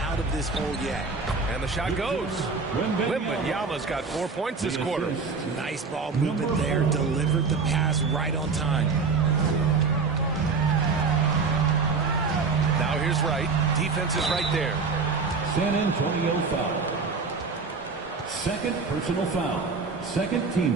out of this hole yet. And the shot goes. Wembanyama's got 4 points this quarter. Nice ball movement there. Delivered the pass right on time. Now here's Wright. Defense is right there. San Antonio foul. 2nd personal foul. 2nd team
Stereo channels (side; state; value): left; quieter; 4.6 dB